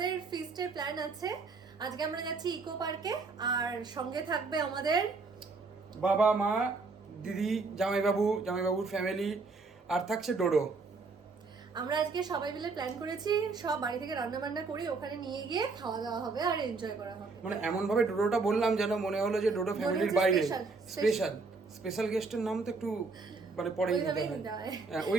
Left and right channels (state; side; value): quieter; left; 4.2 dB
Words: feast এর plan আছে। আজকে আমরা যাচ্ছি ইকো পার্কে আর সঙ্গে থাকবে আমাদের বাবা মা দিদি জামাইবাবুর ফ্যামিলি আর থাকছে ডোডো। আমরা আজকে সবাই মিলে প্ল্যান করেছি সব বাড়ি থেকে রান্না বান্না করে ওখানে নিয়ে গিয়ে খাওয়া দাওয়া হবে আর এনজয় করা হবে। মানে এমন ভাবে ডোডোটা বললাম যেন মনে হলো যে ডোডো ফ্যামিলির বাইরে স্পেশাল গেস্টের নাম তো একটু মানে পরেই নিতে হয়। হ্যাঁ,